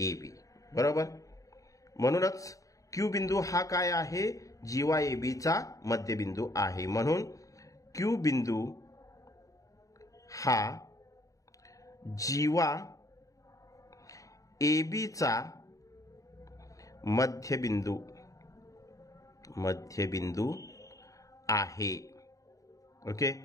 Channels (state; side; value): late; right; 0.16 ms